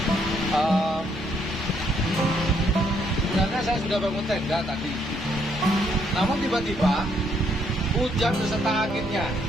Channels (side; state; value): both; normal; correlation 0.71